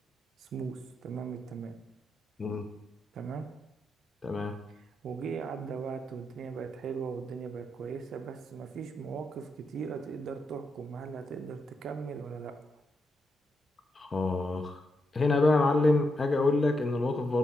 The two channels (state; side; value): normal; both; correlation 0.83